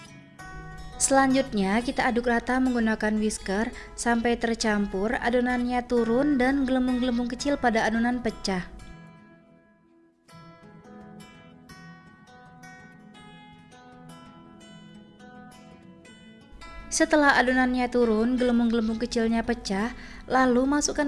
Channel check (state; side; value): identical; both; correlation 1.00